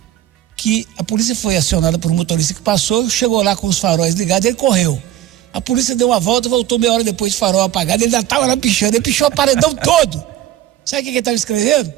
que a polícia foi acionada por um motorista que passou, chegou lá com os faróis ligados, ele correu. A polícia deu uma volta, voltou meia hora depois de farol apagado, ele ainda estava lá pichando, ele pichou o paredão todo. Sabe o que ele estava escrevendo?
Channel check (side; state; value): left; quieter; 12.7 dB